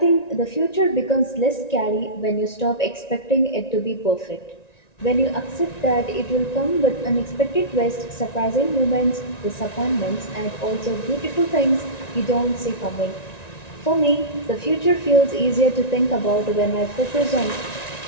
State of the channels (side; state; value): right; late; 1.9 ms